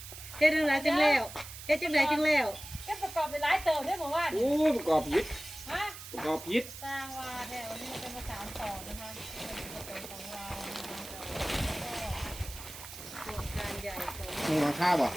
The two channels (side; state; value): right; noise; hiss, 12 dB below the sound